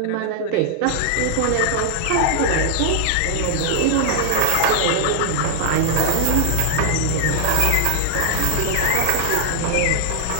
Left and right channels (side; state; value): both; different; correlation -0.01